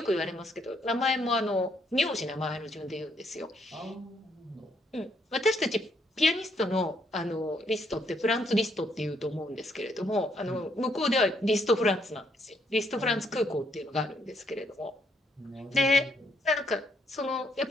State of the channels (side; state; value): both; normal; correlation 0.72